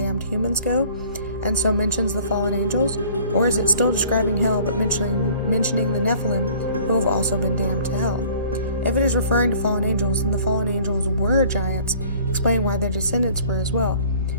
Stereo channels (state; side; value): inverted; both; correlation -0.52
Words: humans go, and so mentions the fallen angels? Or is it still describing hell but mentioning the Nephilim, who have also been damned to hell? If it is referring to fallen angels, then the fallen angels were giants, explaining why their descendants were as well.